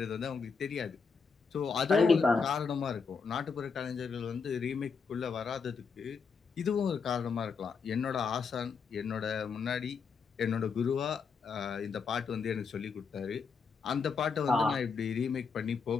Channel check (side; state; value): right; quieter; 5.4 dB